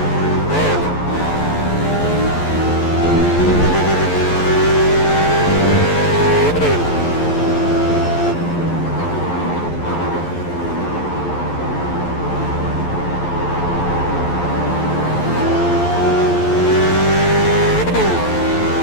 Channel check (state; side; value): late; right; 11 ms